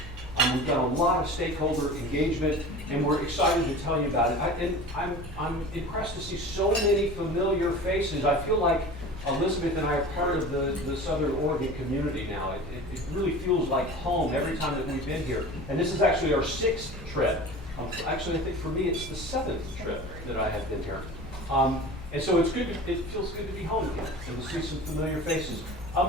We've done a lot of stakeholder engagement, and we're excited to tell you about it. I'm impressed to see so many familiar faces. I feel like Elizabeth and I are part of the Southern Oregon community now. It really feels like home every time that we've been here. And this is actually our 6th trip. Actually, I think for me it's the 7th trip that I have been here. And so it feels good to be home again and to see some familiar faces.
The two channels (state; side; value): normal; both; correlation 0.37